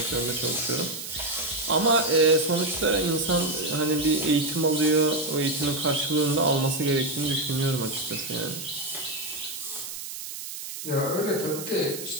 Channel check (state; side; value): noise; right; hiss, 9 dB below the sound